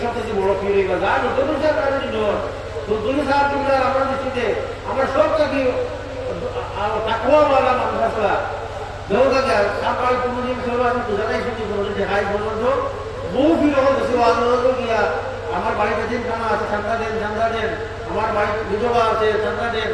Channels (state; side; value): identical; both; correlation 1.00